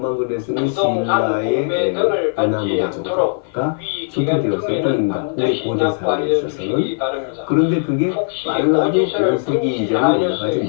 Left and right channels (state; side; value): silent; right; 58 dB below the other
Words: 글래스는 신라의 남의 정도가 출토되었을 뿐입니다. 우리 고대사에 있어서는. 그런데 그게 빨라도 5세기 이전에 올라가지